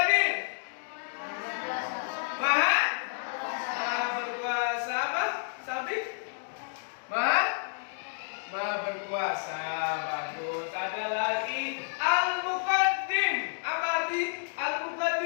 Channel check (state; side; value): silent; right; digital silence